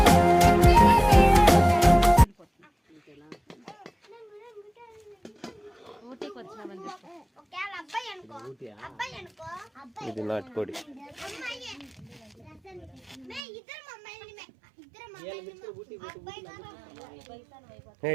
ఊటీకి వచ్చినామని చెప్పు. ఇది నాటుకోడి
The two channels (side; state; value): left; drops out; at 13.5 s